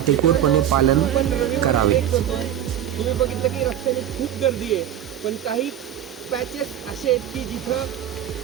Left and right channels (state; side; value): quieter; left; 10.8 dB